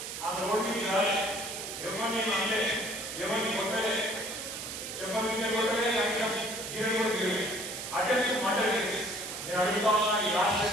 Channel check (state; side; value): noise; right; hiss, 7 dB below the sound